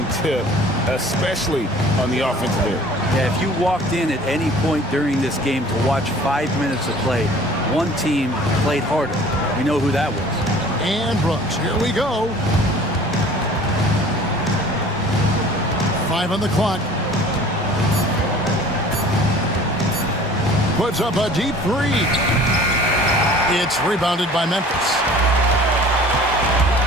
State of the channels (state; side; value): normal; both; correlation 0.48